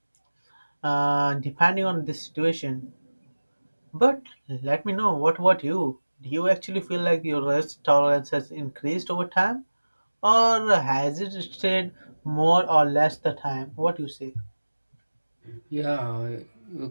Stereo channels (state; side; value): inverted; both; correlation -1.00